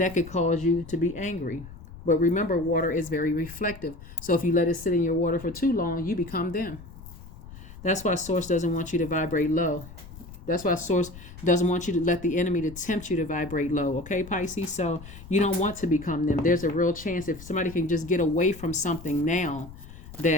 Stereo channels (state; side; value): noise; left; rumble, 16 dB below the sound